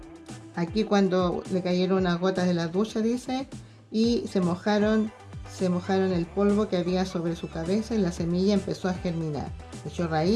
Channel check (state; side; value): identical; both; correlation 1.00